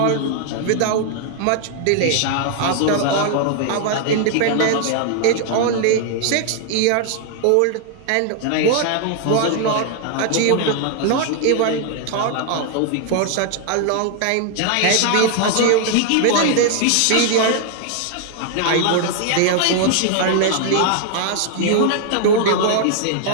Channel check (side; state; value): both; different; correlation 0.00